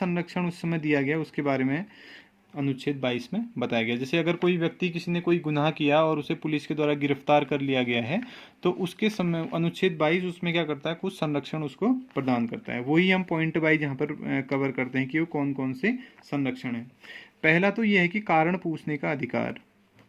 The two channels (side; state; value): both; identical; correlation 1.00